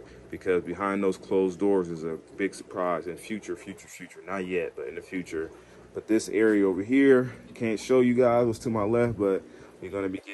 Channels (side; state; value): both; identical; correlation 1.00